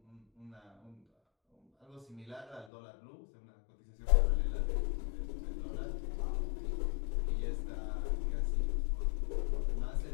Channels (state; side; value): drops out; right; at 2.7 s